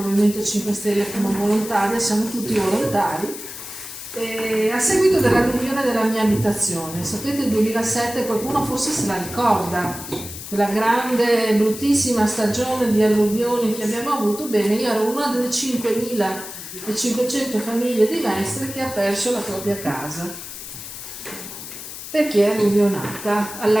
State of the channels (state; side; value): noise; left; hiss, 11 dB below the sound